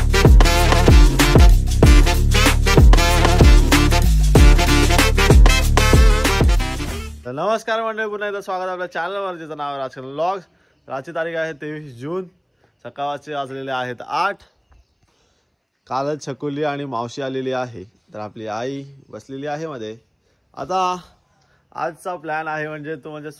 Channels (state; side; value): identical; both; correlation 1.00